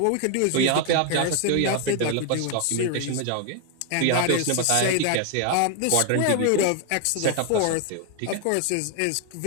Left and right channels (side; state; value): both; different; correlation 0.01